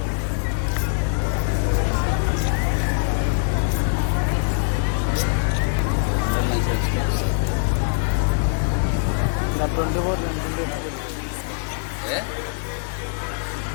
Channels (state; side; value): silent; right; 64 dB below the other